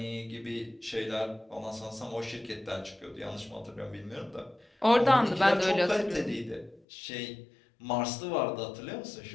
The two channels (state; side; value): drops out; right; at 6.8 s